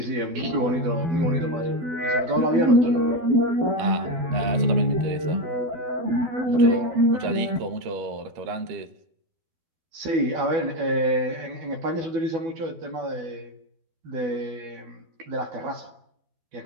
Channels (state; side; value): late; left; 12 ms